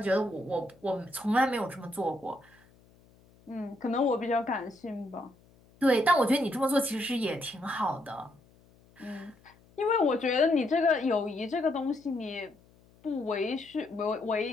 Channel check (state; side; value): noise; left; hum, 29 dB below the sound